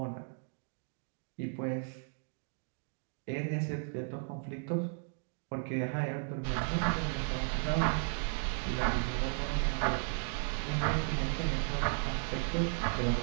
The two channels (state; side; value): silent; left; 54 dB below the other